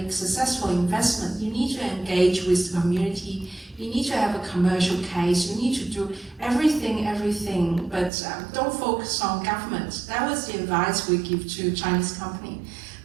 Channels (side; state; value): left; drops out; at 8.1 s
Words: successful investment. You need to engage with the community. You need to have a commercial case. You need to do everything, but don't focus on government. That was the advice we give to Chinese company.